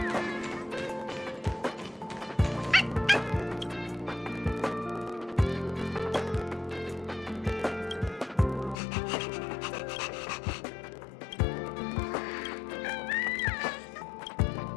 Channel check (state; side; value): drops out; right; at 8.8 s